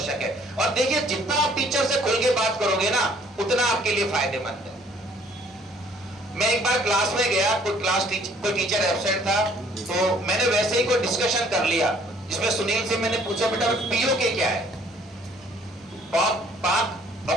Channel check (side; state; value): both; normal; correlation 0.60